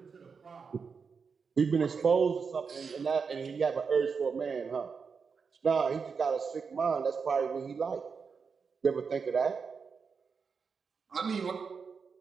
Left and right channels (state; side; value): quieter; left; 5.6 dB